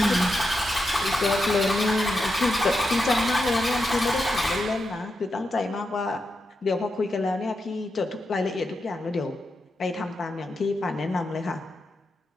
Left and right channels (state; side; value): normal; both; correlation 0.87